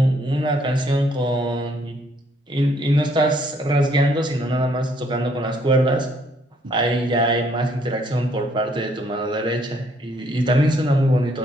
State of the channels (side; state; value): both; normal; correlation 0.67